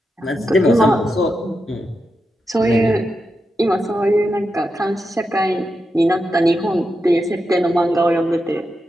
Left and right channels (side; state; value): both; normal; correlation 0.87